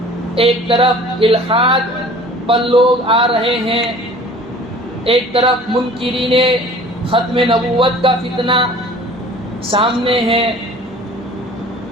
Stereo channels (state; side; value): normal; both; correlation 0.47